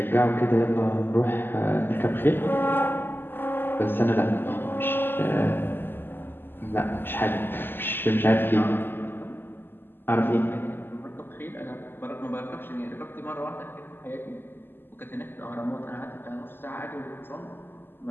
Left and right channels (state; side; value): late; right; 0.098 ms